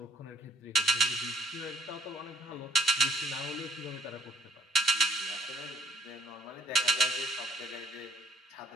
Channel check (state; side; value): normal; both; correlation 0.65